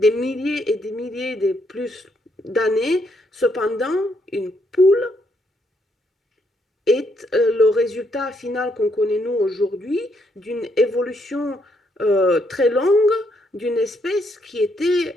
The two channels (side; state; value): both; normal; correlation 0.74